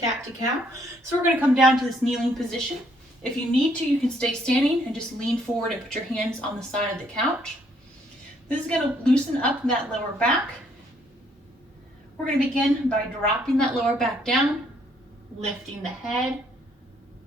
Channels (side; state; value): both; normal; correlation 0.68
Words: So we're going to come down to this kneeling position. If you need to, you can stay standing and just lean forward and put your hands on the side of the couch. This is going to loosen up that lower back. We're going to begin by dropping that lower back down, lifting the head.